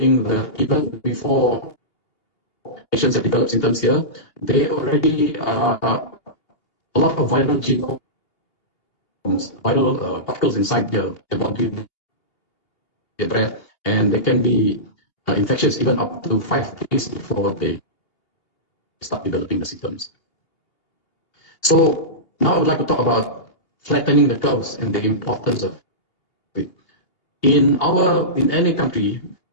that even before patients have developed symptoms here, they already are a lot of viral genomes, viral particles inside their body, their breath, and they can be infectious even up to 5 days before they start developing the symptoms. So now I would like to talk about flattening the curves and the importance of it. In any country,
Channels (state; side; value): late; right; 2.8 ms